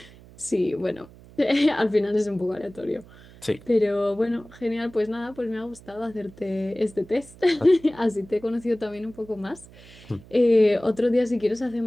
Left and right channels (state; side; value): noise; right; hum, 22 dB below the sound